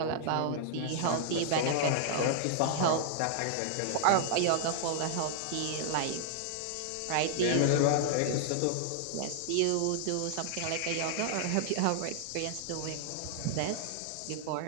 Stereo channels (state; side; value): different; both; correlation -0.01